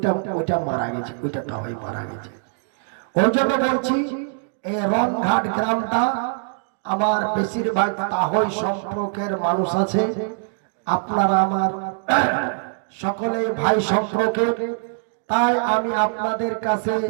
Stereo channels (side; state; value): left; silent; digital silence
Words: ওটা মারা গেছে, ওইটা তাহই মারা গেছে। ওই জন্য বলছি এই রনঘাট গ্রামটা আমার বেশিরভাগ তাহই সম্পর্কের মানুষ আছে। আপনারা আমার সকলেই ভাই সম্পর্কের, তাই আমি আপনাদের কাছে